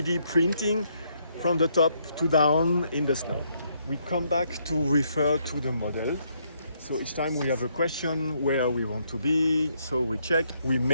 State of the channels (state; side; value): inverted; both; correlation -0.73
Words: printing from the top to down in the snow. We come back to refer to the model. So each time we have a question where we want to be, so we check, we